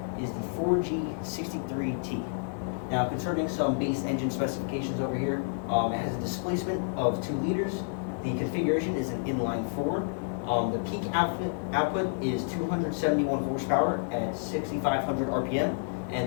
is the 4G63T. Now, concerning some base engine specifications over here, it has a displacement of 2 liters. The configuration is an inline 4. The peak output is 271 horsepower at 6,500 RPM,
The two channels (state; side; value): silent; right; digital silence